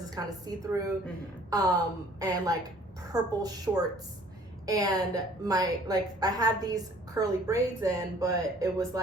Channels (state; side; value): normal; both; correlation 0.55